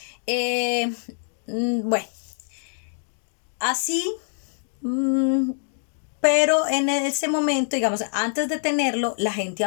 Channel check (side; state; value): right; silent; digital silence